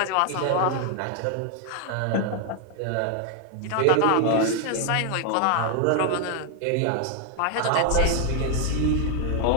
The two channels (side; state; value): both; different; correlation 0.00